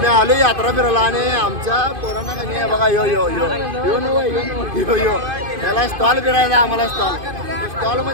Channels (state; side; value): late; left; 2.5 ms